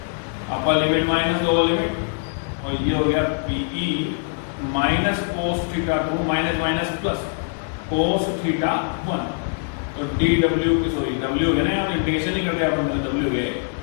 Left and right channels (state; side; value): silent; right; 64 dB below the other